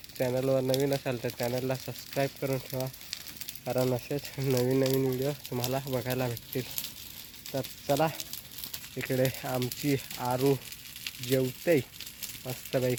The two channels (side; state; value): left; noise; hum, 29 dB below the sound